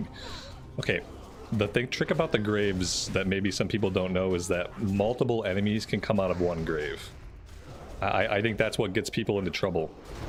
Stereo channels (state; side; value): identical; both; correlation 1.00